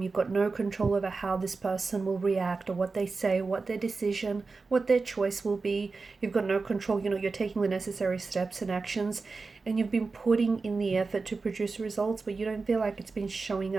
You've got no control over how this person will react or what they say, what their decision, what their choice will be. You've got no control. You're taking the necessary steps and actions, and you've been putting in the effort to produce results, but you don't feel like it's been showing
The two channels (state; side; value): quieter; left; 4.2 dB